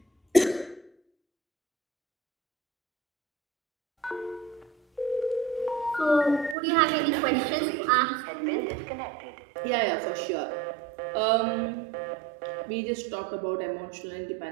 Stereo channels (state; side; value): drops out; left; at 6.6 s